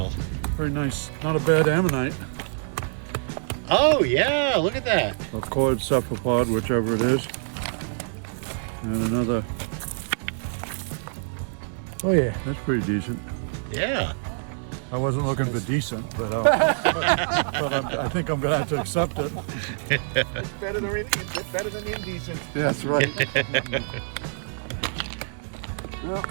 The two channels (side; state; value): left; silent; 61 dB below the other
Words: Very nice. Not a bad ammonite. Oh yeah, look at that. Or cord cephalopod, whichever it is. And another. Oh yeah, that's pretty decent. Yeah. I wasn't looking for decent, but I think I'm gonna have to accept it. It's better than indecent. That's right.